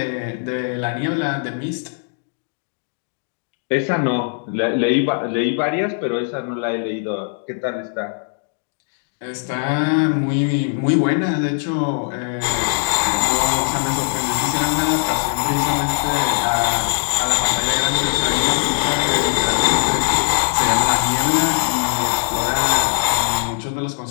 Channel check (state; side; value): silent; right; digital silence